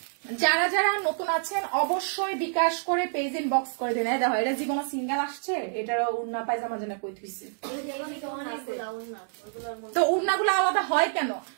যারা যারা নতুন আছেন অবশ্যই বিকাশ করে পেজ ইনবক্স করে দিন। দেখো এটা জীবন সিঙ্গেল আসছে, এটার উন্না পায়জামা যেন কই থইছে। তো উন্নাগুলো আলাদা হয় কেন?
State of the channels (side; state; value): left; silent; digital silence